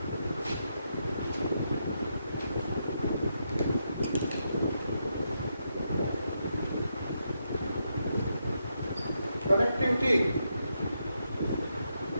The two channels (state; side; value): inverted; both; correlation -0.82